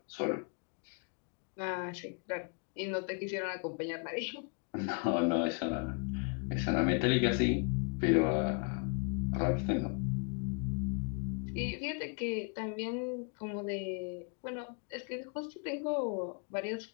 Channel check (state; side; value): quieter; right; 37.2 dB